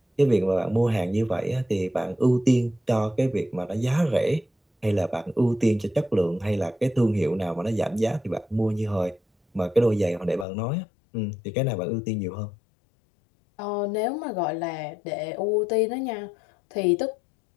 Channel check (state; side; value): drops out; right; at 10.5 s